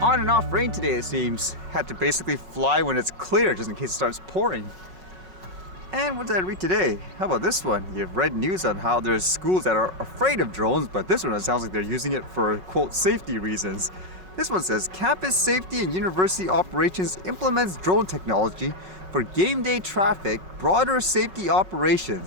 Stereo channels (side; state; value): left; late; 5.3 ms